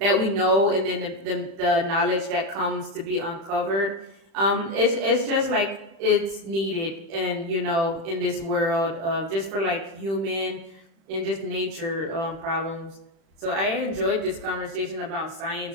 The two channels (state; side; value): late; left; 36 ms